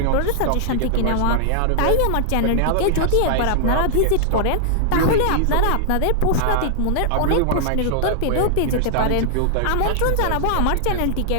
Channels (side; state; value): both; different; correlation -0.01